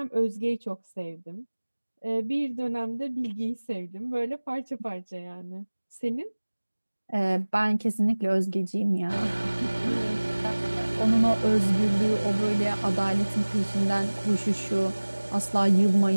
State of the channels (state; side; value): inverted; both; correlation -1.00